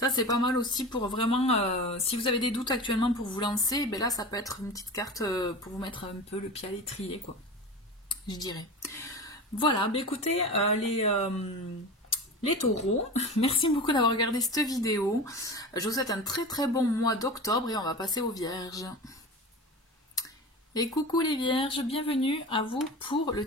c'est pas mal aussi pour vraiment, si vous avez des doutes actuellement pour vous lancer, là ça peut être une petite carte pour vous mettre un peu le pied à l'étrier, quoi, je dirais. Voilà, écoutez, les taureaux, merci beaucoup d'avoir regardé cette vidéo. Je vous souhaite un très très bon mois d'octobre et on va passer aux vierges. Et coucou les vierges, bienvenue à vous pour le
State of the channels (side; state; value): both; normal; correlation 0.31